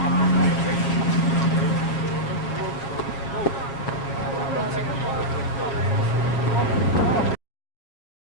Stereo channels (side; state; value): right; late; 7.4 ms